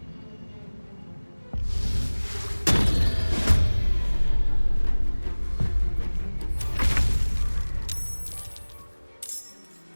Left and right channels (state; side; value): inverted; both; correlation -1.00